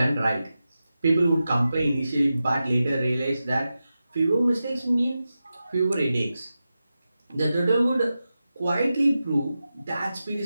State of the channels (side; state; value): both; inverted; correlation -0.92